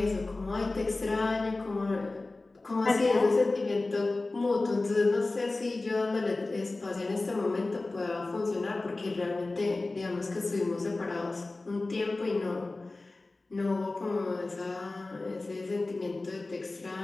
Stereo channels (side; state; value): right; quieter; 3.2 dB